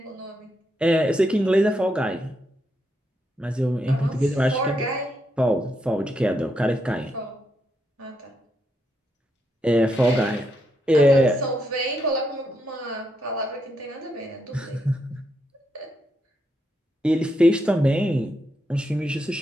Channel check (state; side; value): normal; both; correlation 0.80